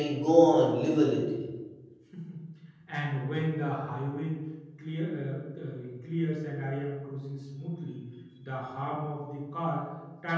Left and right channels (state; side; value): identical; both; correlation 1.00